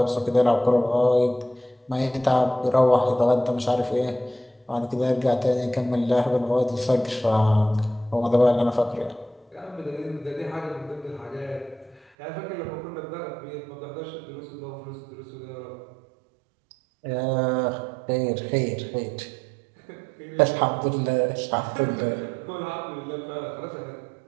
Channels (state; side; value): drops out; left; at 12.1 s